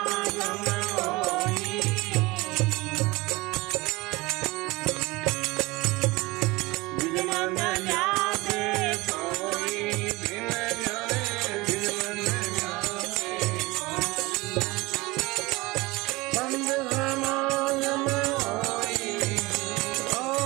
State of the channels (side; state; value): left; quieter; 22.4 dB